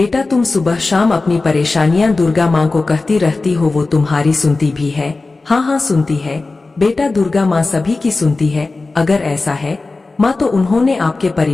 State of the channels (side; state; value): right; quieter; 3.5 dB